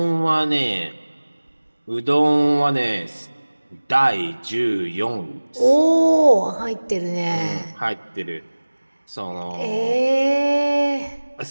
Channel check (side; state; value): both; inverted; correlation -1.00